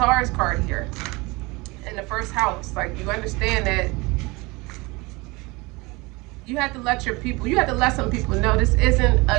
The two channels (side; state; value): left; quieter; 24.7 dB